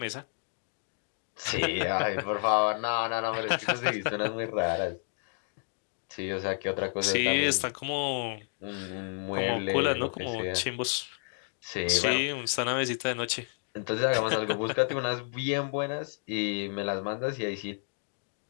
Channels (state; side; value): silent; right; 57 dB below the other